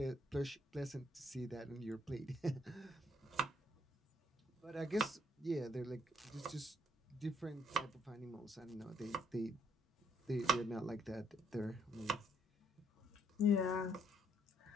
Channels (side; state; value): both; normal; correlation 0.68